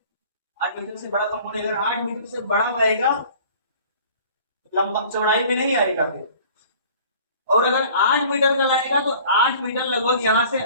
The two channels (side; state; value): both; inverted; correlation -0.48